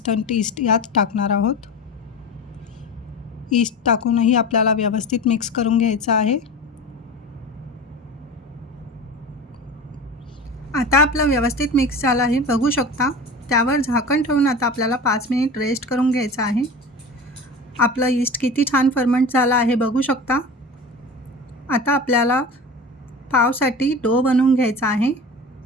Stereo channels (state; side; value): normal; both; correlation 0.32